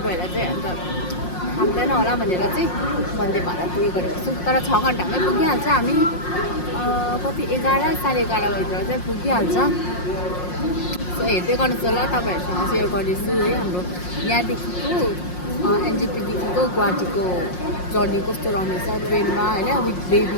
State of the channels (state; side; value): late; right; 5.6 ms